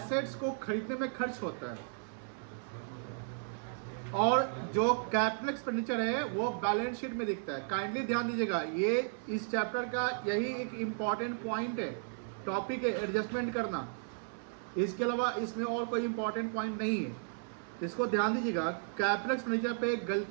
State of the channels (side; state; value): left; silent; 55 dB below the other